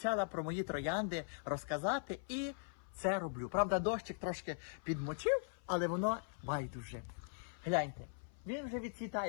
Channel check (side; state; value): right; silent; 51 dB below the other